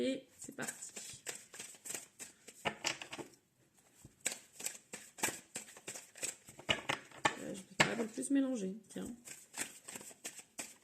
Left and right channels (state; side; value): identical; both; correlation 1.00